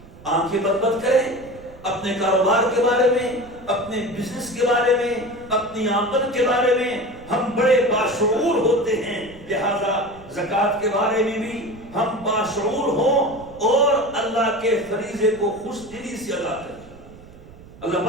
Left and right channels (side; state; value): right; noise; rumble, 20 dB below the sound